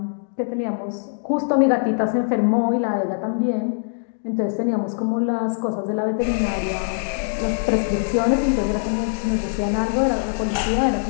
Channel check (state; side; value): silent; right; digital silence